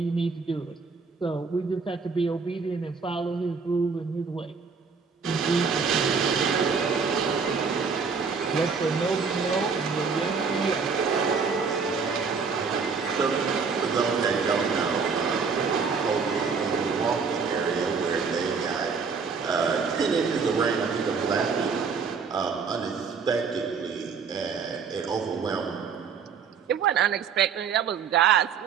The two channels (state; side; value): quieter; left; 5.5 dB